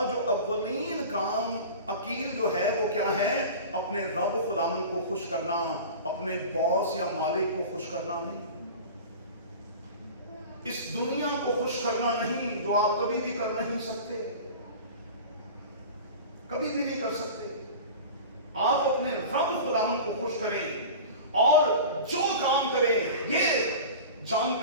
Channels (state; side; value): inverted; both; correlation -0.35